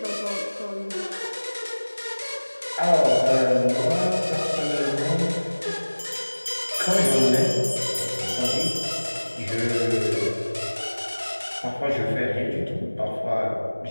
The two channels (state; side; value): inverted; both; correlation -1.00